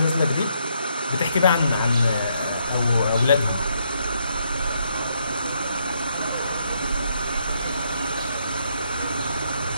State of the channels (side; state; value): both; inverted; correlation -0.75